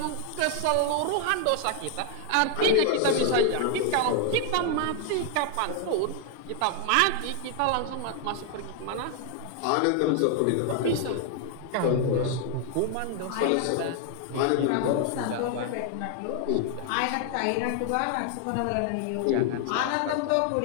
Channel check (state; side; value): different; both; correlation 0.00